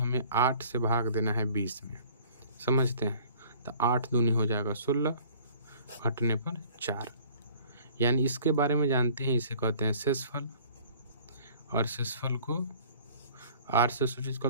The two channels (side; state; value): both; inverted; correlation -0.51